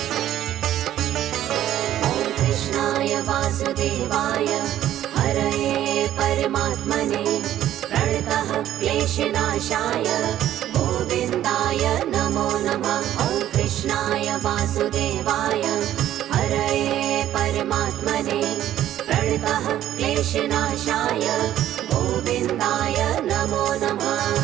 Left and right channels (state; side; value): quieter; left; 12.2 dB